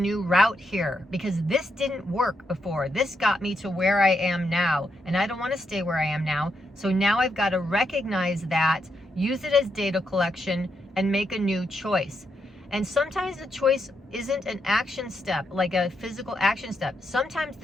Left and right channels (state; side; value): normal; both; correlation 0.81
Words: route here because this didn't work before. This got me to where I am now, and I don't want to stay where I am now. So now I've got to recognize that, use it as data collection, and make a new choice. And sometimes the choice isn't an action step, like a physical action step. Sometimes